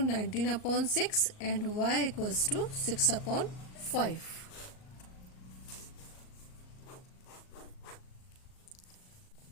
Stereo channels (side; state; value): right; late; 38 ms